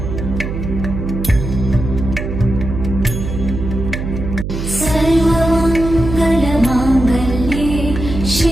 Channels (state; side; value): noise; right; hum, 5 dB below the sound